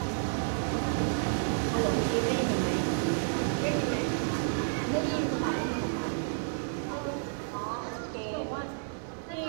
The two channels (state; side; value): silent; left; digital silence